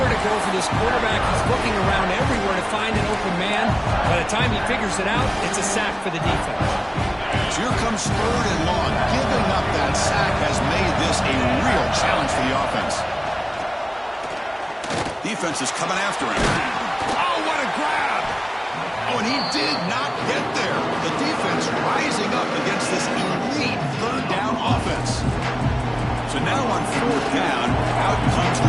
to go for this quarterback. He's looking around everywhere to find an open man. By the time he figures it out, it's a sack for the defense. So here comes 3rd and long. Giving up that sack has made this a real challenge for the offense. Defense is coming after him. Oh, what a grab! Oh, and he did not get there. The defense rising up against this elite 3rd down offense. So now on 4th down, out comes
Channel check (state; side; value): identical; both; correlation 1.00